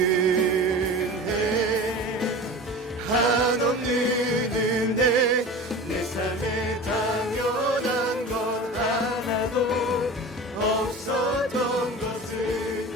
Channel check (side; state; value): both; normal; correlation 0.34